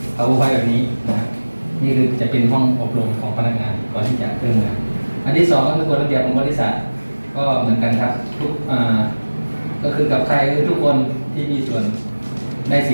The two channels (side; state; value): both; inverted; correlation -1.00